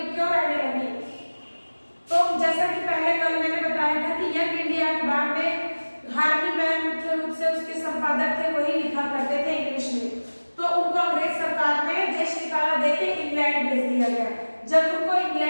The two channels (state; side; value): inverted; both; correlation -1.00